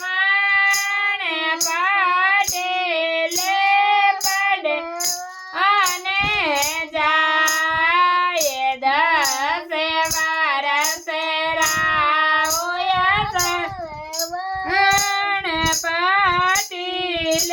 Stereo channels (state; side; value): identical; both; correlation 1.00